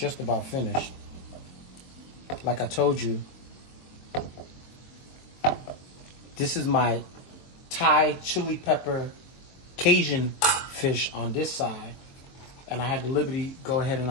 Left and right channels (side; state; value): right; late; 23 ms